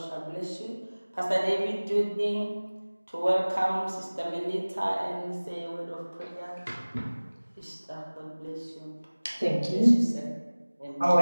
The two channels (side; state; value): both; inverted; correlation -1.00